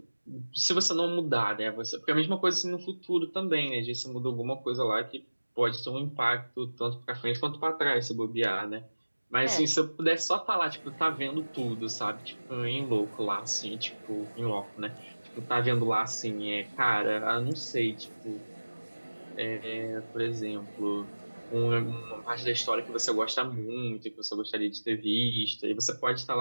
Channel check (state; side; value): inverted; both; correlation -1.00